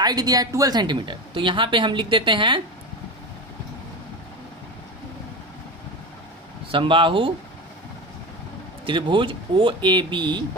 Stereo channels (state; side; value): normal; both; correlation 0.24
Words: दिया है 12 सेंटीमीटर, तो यहाँ पे हम लिख देते हैं समबाहु त्रिभुज OAB